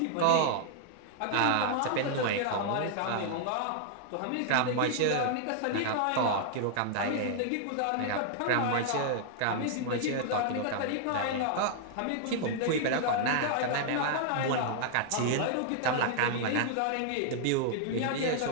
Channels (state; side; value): different; both; correlation -0.01